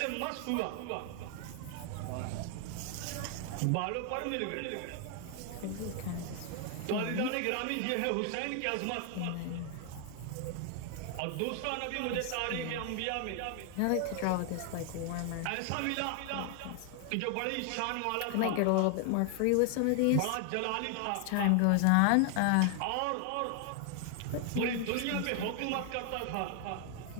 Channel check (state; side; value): different; both; correlation 0.00